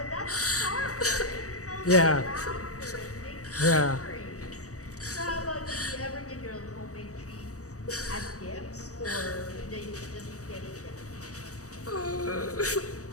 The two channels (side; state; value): right; late; 0.66 ms